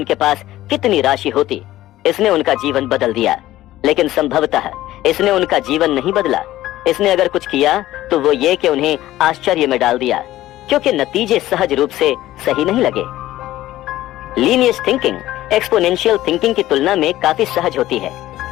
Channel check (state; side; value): quieter; right; 15.0 dB